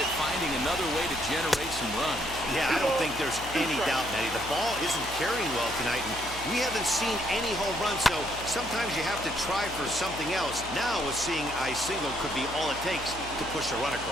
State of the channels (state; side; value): noise; left; hum, 13 dB below the sound